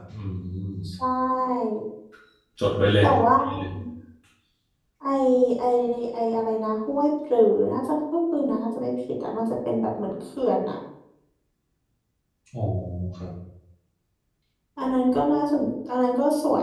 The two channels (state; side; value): identical; both; correlation 1.00